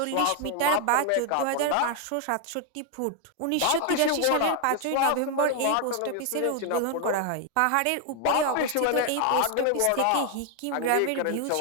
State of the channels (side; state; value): both; different; correlation 0.00